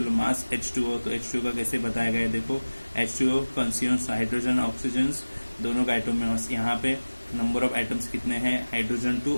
mass? H2O। तो H2O का कैसे बताया गया है? देखो H2O कंज्यूम्स हाइड्रोजन ऑक्सीजन दोनों का एटॉमिक मास यहाँ पे नंबर ऑफ एटम्स कितने हैं, हाइड्रोजन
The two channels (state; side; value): inverted; both; correlation -1.00